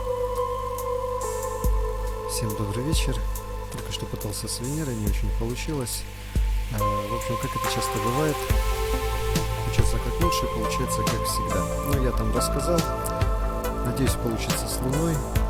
Всем добрый вечер. Только что пытался с Венерой, не очень получилось. В общем, как это часто бывает, учиться как лучше, получается как всегда. Ну, я там рассказал. Надеюсь, получится с Луной.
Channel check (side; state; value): both; identical; correlation 1.00